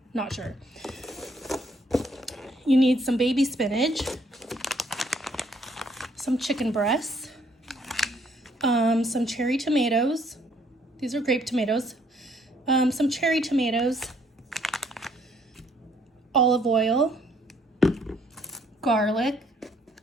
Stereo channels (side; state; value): both; normal; correlation 0.66